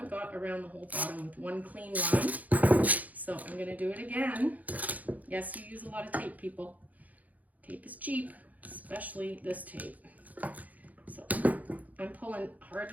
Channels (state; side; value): late; left; 0.078 ms